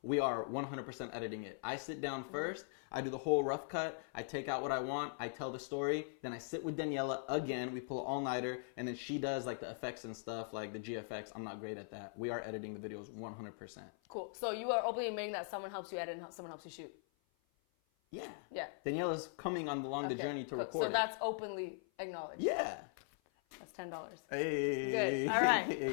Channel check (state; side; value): silent; right; 51 dB below the other